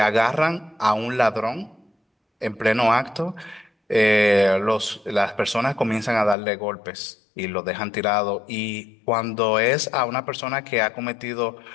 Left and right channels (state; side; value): drops out; right; at 6.4 s